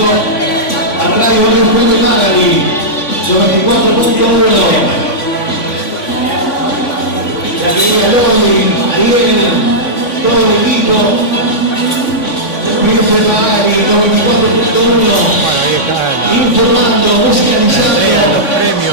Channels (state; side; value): late; right; 3.5 ms